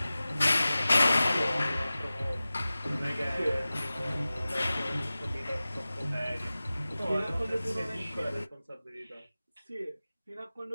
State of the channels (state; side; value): inverted; both; correlation -0.96